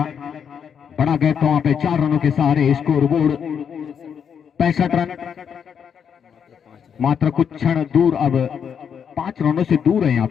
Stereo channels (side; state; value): right; quieter; 7.5 dB